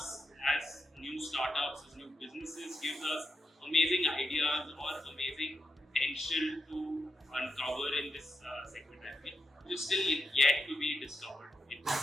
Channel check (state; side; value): normal; both; correlation 0.85